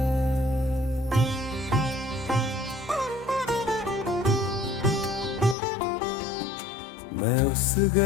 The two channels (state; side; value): drops out; right; at 5.6 s